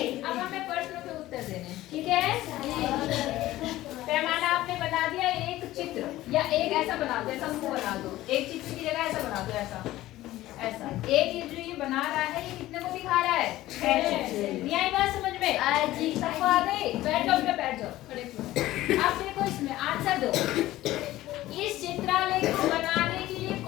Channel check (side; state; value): right; quieter; 15.9 dB